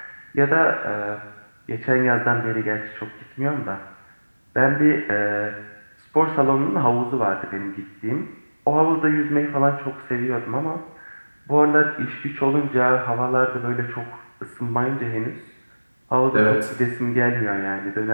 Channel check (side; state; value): both; inverted; correlation -1.00